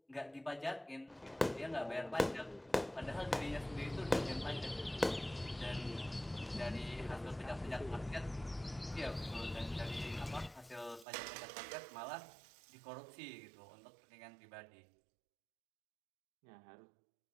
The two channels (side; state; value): left; drops out; at 11.1 s